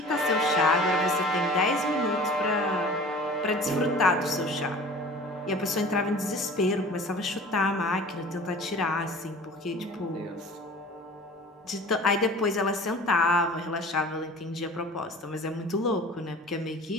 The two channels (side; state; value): both; normal; correlation 0.43